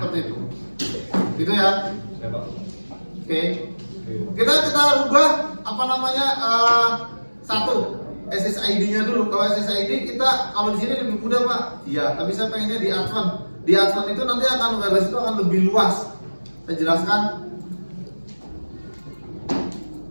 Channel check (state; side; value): inverted; both; correlation -1.00